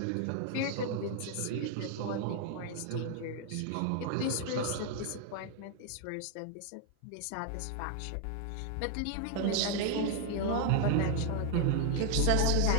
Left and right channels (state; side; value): different; both; correlation -0.01